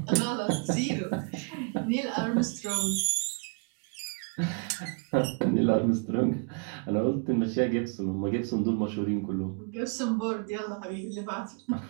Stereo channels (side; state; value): left; quieter; 37.7 dB